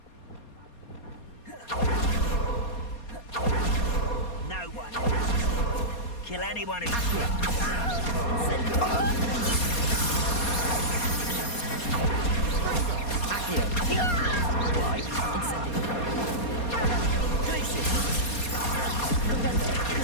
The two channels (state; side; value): late; right; 4.2 ms